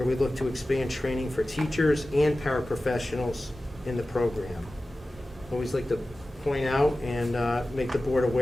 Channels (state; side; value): normal; both; correlation 0.95